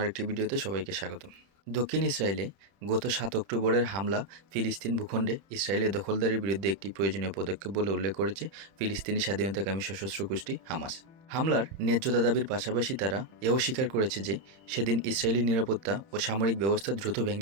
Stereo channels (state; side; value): late; left; 31 ms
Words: আরেকটি ভিডিওতে সবাইকে স্বাগতম। দক্ষিণ ইসরায়েলে গত ৭ অক্টোবরের হামলা ফিলিস্তিন ভূখণ্ডে ইসরায়েলের দখলদারির বিরুদ্ধে একটি প্রয়োজনীয় পদক্ষেপ বলে উল্লেখ করেছে ফিলিস্তিনি স্বাধীনতাকামী সশস্ত্র গোষ্ঠী হামাস। হামলার ন্যায্যতা দাবির পাশাপাশি তারা এও স্বীকার করেছে যে সেদিন ইসরায়েলি নিরাপত্তা ও সামরিক ব্যবস্থা দ্রুত